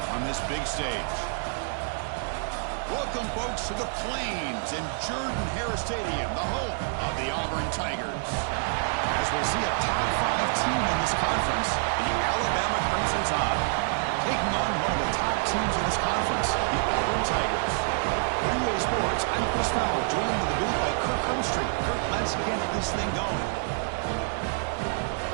on this big stage? Welcome, folks, to the Plains and Jordan-Hare Stadium, the home of the Auburn Tigers. As we'll see a top 5 team in this conference, the Alabama Crimson Tide, taking on one of the top teams in this conference, the Auburn Tigers. For EA Sports, I'm Chris Fowler, joined in the booth by Kirk Herbstreit. Kirk, let's get this thing going.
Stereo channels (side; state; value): left; silent; 60 dB below the other